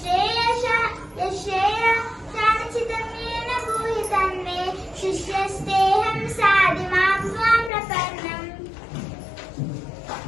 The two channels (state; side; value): drops out; right; at 7.7 s